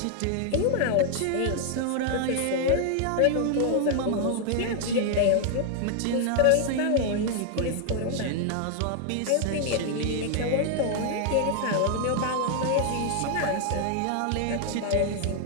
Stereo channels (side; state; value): both; different; correlation 0.00